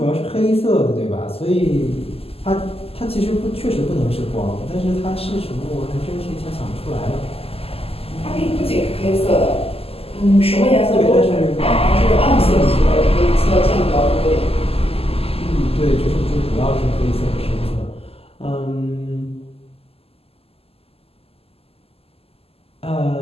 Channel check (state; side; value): late; right; 0.28 ms